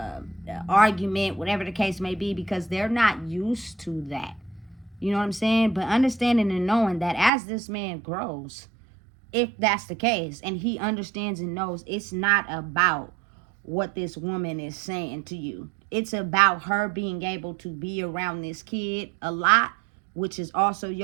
argument, whatever the case may be, because they're not used to that. You know what I'm saying? But understanding and knowing that as this man grows, if that's the case, and he understands and knows, it's not about what this woman is saying to you. It's about her being able to be around this kid a lot, which is also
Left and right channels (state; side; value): drops out; left; at 7.3 s